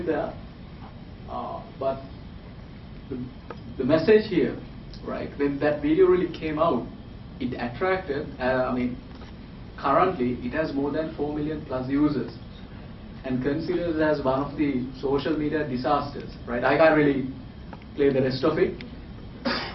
there. But the message here, right, when that video really came out, it attracted, currently it has more than 4 million plus users and considered as one of the social media disasters, right? I can't really play the rest of it.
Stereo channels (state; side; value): identical; both; correlation 1.00